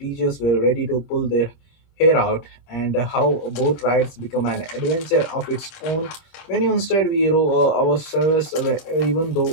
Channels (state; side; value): late; right; 25 ms